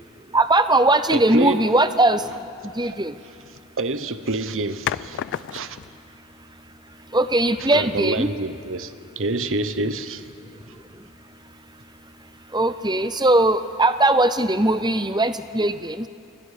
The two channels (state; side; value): normal; both; correlation 0.48